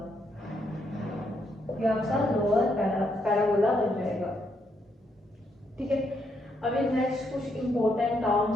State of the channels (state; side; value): normal; both; correlation 0.76